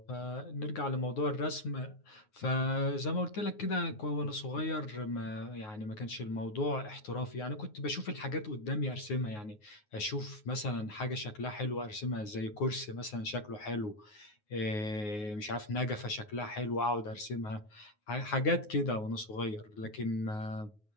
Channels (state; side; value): late; right; 9.5 ms